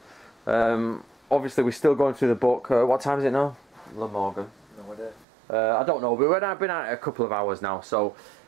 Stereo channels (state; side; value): drops out; left; at 5.2 s